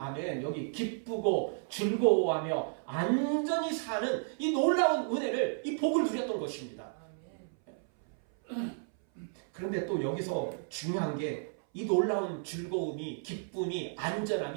여기 기쁘고 즐거워하며 안전히 사는 이 놀라운 은혜를, 이 복을 누렸던 것입니다. 그런데 또 여기서 중요한 게 이 놀라운 즐거움이, 기쁨이,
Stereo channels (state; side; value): silent; left; 56 dB below the other